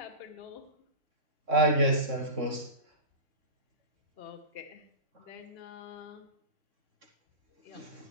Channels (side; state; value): left; late; 3.6 ms